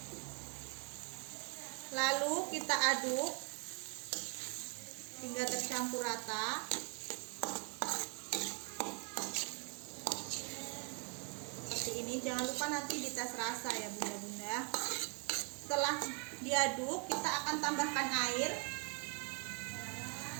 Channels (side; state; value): left; quieter; 36.8 dB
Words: Lalu kita aduk hingga tercampur rata. Seperti ini, jangan lupa nanti dites rasa ya bunda-bunda. Setelah diaduk, kita akan tambahkan air.